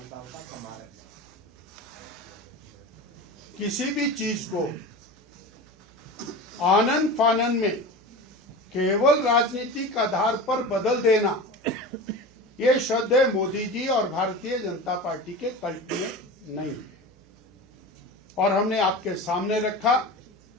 का कमाल है। किसी भी चीज को आनन फानन में केवल राजनीतिक आधार पर बदल देना, ये श्रद्धेय मोदी जी और भारतीय जनता पार्टी के कल्ट में नहीं है। और हमने आपके सामने रखा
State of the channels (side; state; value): right; noise; hum, 30 dB below the sound